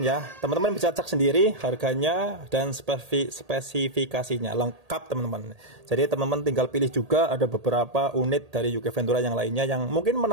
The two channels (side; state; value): left; late; 1.8 ms